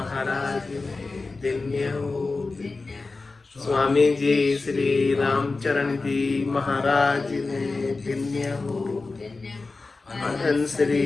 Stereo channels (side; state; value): right; quieter; 3.7 dB